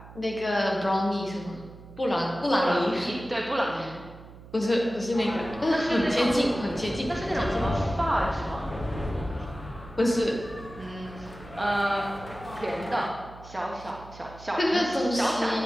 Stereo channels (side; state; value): right; noise; hum, 18 dB below the sound